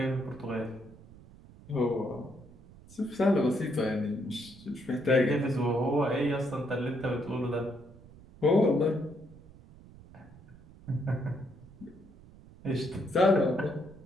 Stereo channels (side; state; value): right; noise; rumble, 22 dB below the sound